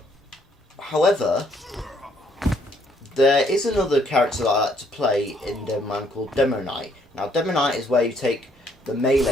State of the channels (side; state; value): both; normal; correlation 0.67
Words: However, there is another character that I like to play in Demo Man called Demo Knight. Now, Demo Knight is where you take the